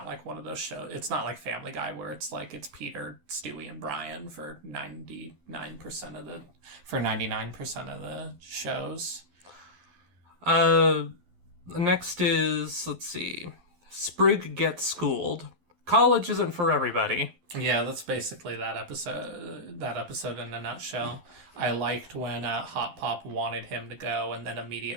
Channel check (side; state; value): left; late; 11 ms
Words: like one of those shows. It's not like Family Guy where it's like it's Peter, Stewie, and Brian for 99% of the shows. Next is, let's see, Sprig gets schooled. College isn't for everybody. Yeah, that's basically that episode. That episode in a nutshell. I liked when Hot Pop wanted him to go and then